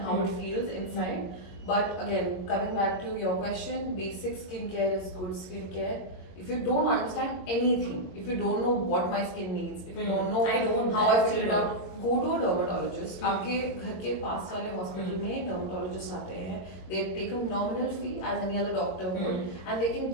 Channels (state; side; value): late; right; 22 ms